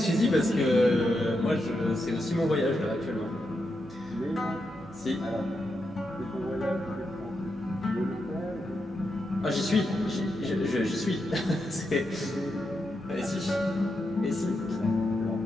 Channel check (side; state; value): both; normal; correlation 0.85